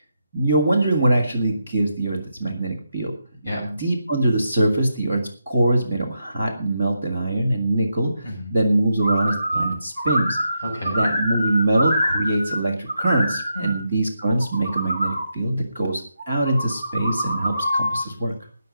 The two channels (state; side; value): inverted; both; correlation -0.83